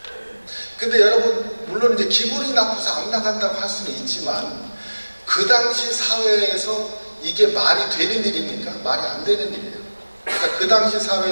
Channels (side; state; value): both; inverted; correlation -1.00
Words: 근데 여러분, 물론 이제 기분이 나빠서 안 나간다고 할 수는 있지만, 그 당시 사회에서 이게 말이 되는 일입니까? 말이 안 되는 일이에요. 그러니까 그 당시